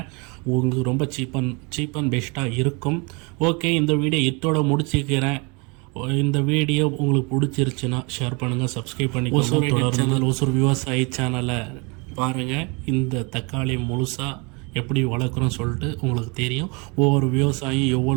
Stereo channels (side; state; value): left; quieter; 30.2 dB